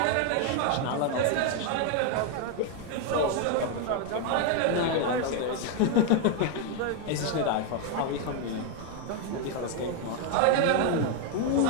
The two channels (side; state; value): both; different; correlation 0.01